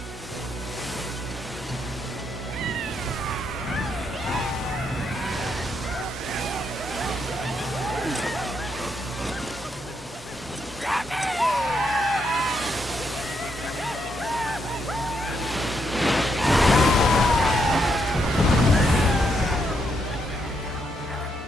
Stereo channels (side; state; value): both; normal; correlation 0.78